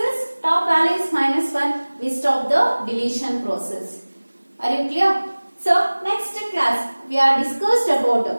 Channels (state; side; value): inverted; both; correlation -1.00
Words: top value is minus 1, we stop the deletion process. Are you clear? So next class we are discussed about